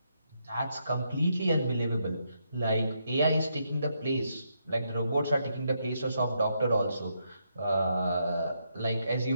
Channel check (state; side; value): inverted; both; correlation -0.79